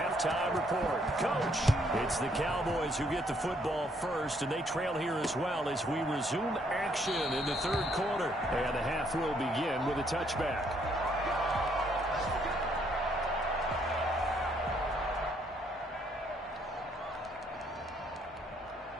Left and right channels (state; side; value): normal; both; correlation 0.69